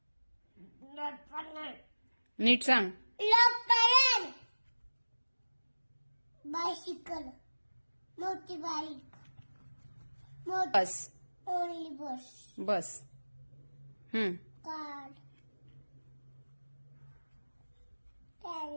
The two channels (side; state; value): both; inverted; correlation -1.00